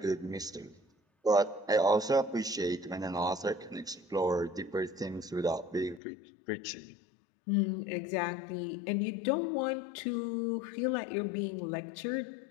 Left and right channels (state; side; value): drops out; right; at 6.0 s